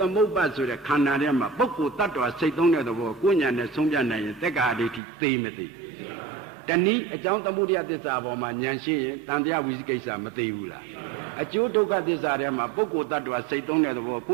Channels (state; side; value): drops out; left; at 5.0 s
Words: မုပ္ပါဆိုတဲ့ခန္ဓာထဲမှာပုဂ္ဂိုလ်တ attva စိတ်သုံးတဲ့သဘောကိုဉာဏ်နဲ့ဆုံးဖြတ်နိုင်ရင်တက္ကာအဋ္ဌိသိမသိတနည်းအကြောင်းသမုဒယသစ္စာပေါ်မှာဉာဏ်ရှိရင်တန်တရားဝိသိကိစ္စမသိဘူးလားအကျိုးဒုက္ခသစ္စာထဲမှာပုဂ္ဂိုလ်တ attva စိတ်သုံးတဲ့သဘောကိ